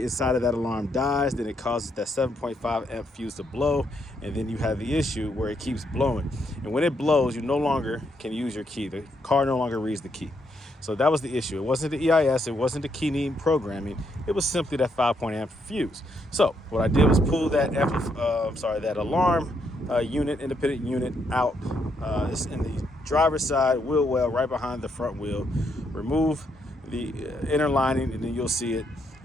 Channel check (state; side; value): normal; both; correlation 0.76